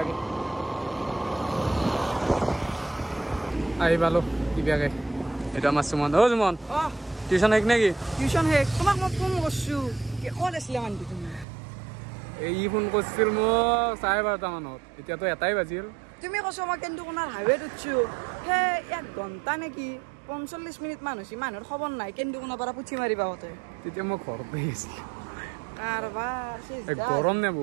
আহি পালোঁ কিবাকে এইটো আমাৰ সুমন সুমন টিউশন হেক নাকি টিউশন হেক তোমাক মই ফোন করছু কি ক'ত আছিলা মানটি তুমি এই ফোন করছিল মোক 12:30 মানত এতিয়া তো এটাই বাজিল তুমি কৈছো মই কিন্তু কোনাৰ হাইৱেত উঠছো হে 1 ঘণ্টা নেকি 45 মিনিট মান হৈছে মানুহৰ খবৰ নাই কিন্তু কোনাৰ পৰা পুঠি মাৰিবা হতে তেতিয়া মই ঘৰতে আছিল কাৰবাৰ এই গৰম নে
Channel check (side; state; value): left; drops out; at 11.5 s